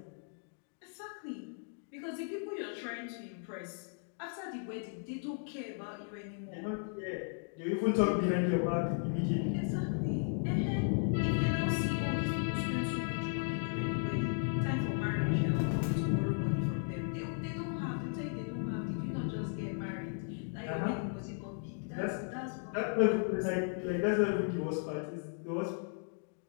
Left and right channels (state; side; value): silent; right; 54 dB below the other